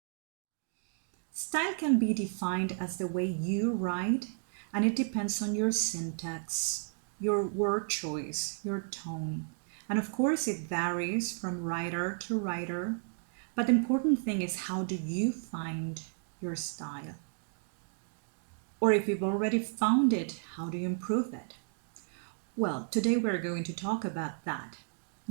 Style can be defined as the way you write, and it depends on your syntax, your word choice, your tone. And of course, it varies from writer to writer, but the important thing is, how do you find your style? Or if you've already found it, how do you improve it? Well, today we're going to talk about that.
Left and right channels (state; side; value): silent; left; digital silence